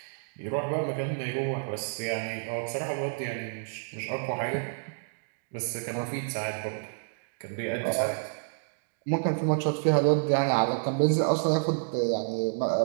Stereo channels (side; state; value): left; silent; digital silence